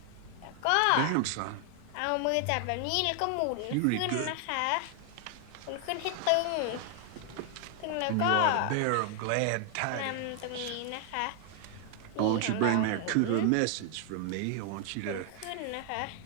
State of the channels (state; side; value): different; both; correlation 0.00